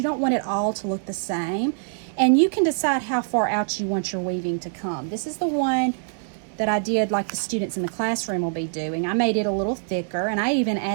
don't want it all to look the same. And you can decide how far out you want your weaving to come. This is the one that I did like the students in the classroom will be doing. I made it a little thicker, and I even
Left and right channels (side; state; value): left; silent; 62 dB below the other